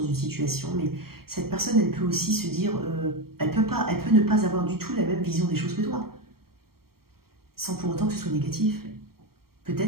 une situation, mais cette personne, elle peut aussi se dire, elle peut ne pas avoir du tout la même vision des choses que toi, sans pour autant que ce soit négatif.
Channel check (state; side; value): late; left; 0.94 ms